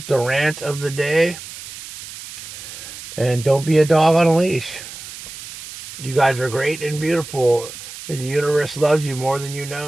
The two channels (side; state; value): right; noise; hiss, 13 dB below the sound